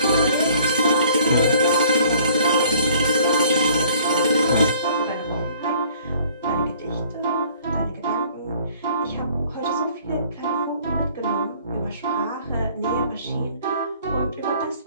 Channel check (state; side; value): inverted; both; correlation -0.55